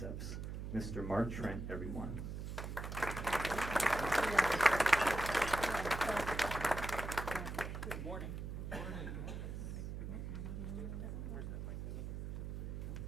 Mr. Mark Trent, everyone. Good morning.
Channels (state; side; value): noise; right; hum, 5 dB below the sound